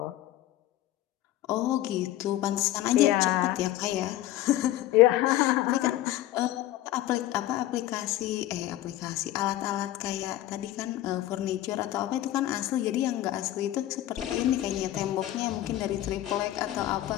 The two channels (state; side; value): quieter; right; 14.4 dB